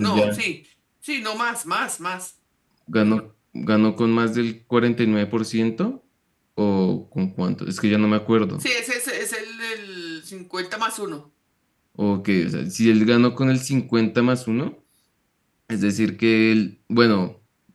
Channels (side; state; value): both; identical; correlation 1.00